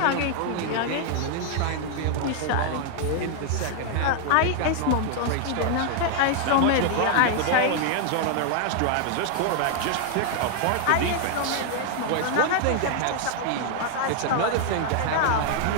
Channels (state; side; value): different; both; correlation 0.00